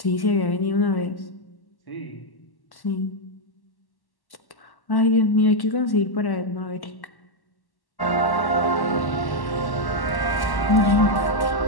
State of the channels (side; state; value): right; late; 1.1 ms